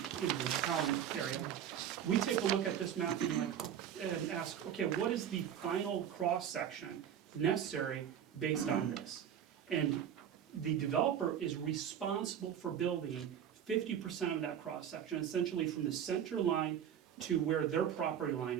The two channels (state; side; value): quieter; left; 9.3 dB